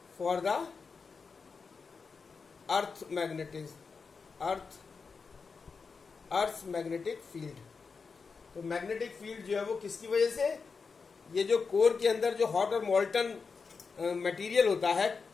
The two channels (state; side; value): quieter; right; 5.0 dB